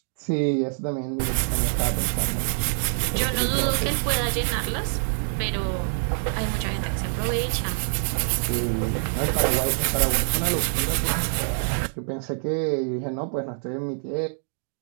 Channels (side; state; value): left; silent; digital silence